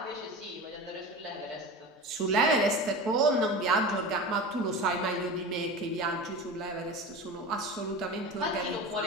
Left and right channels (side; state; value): both; normal; correlation 0.30